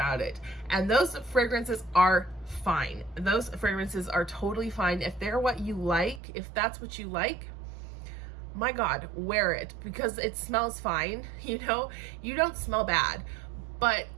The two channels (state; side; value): drops out; left; at 6.2 s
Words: it. And those fragrances are fine. Those fragrances are totally fine. If they're what you like, if that's what you like, my God, wear it because it smells fine. You know, you don't smell bad, but